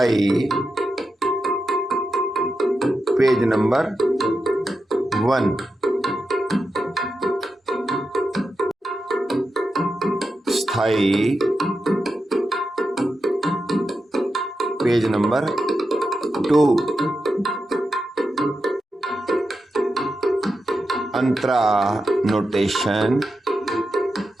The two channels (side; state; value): both; normal; correlation 0.88